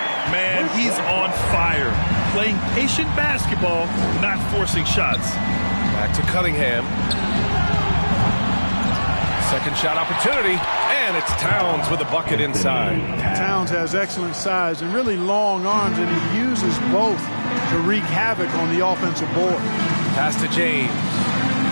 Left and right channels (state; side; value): inverted; both; correlation -1.00